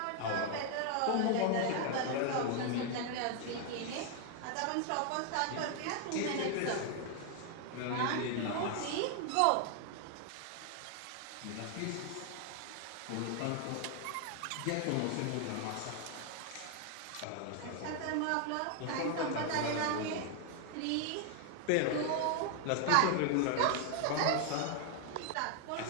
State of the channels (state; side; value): different; both; correlation 0.00